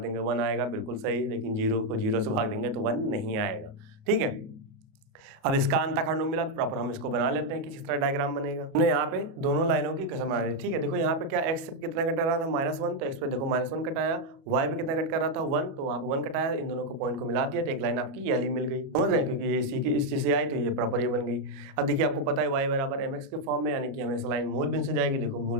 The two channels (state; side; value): late; left; 37 ms